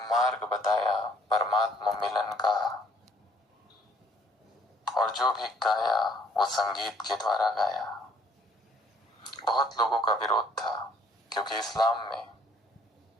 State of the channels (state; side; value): normal; both; correlation 0.61